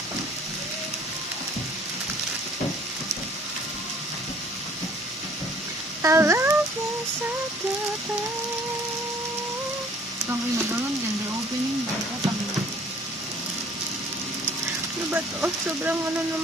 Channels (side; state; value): both; normal; correlation 0.56